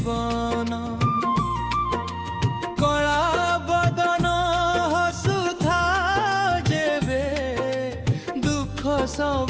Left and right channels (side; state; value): both; identical; correlation 1.00